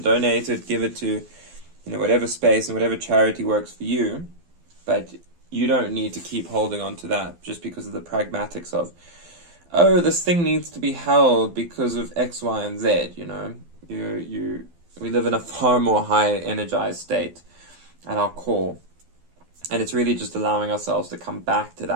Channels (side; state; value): left; late; 12 ms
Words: donate it, give it to, whatever space and whatever charity works for you, but you don't need to keep holding on to that just because of the pragmatics of, oh, this thing needs to be held because of X, Y, and Z, we live in a far more high energized state at our core, and it's really just allowing ourselves to come back to